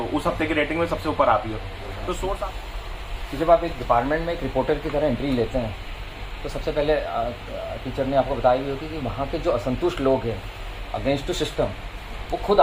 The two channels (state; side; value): identical; both; correlation 1.00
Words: उस हफ्ते की रेटिंग में सबसे ऊपर आप ही हो। तो सोर्स आप जब आप एक डिपार्टमेंट में एक रिपोर्टर की तरह एंट्री लेते हैं तो सबसे पहले टीचर ने आपको बताई हुई होगी कि वहाँ के जो असंतुष्ट लोग हैं अगेंस्ट टू सिस्टम, वो खुद